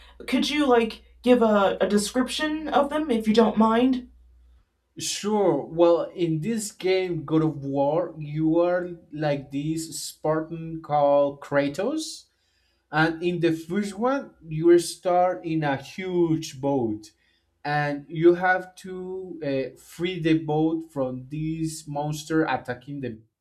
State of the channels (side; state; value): both; identical; correlation 1.00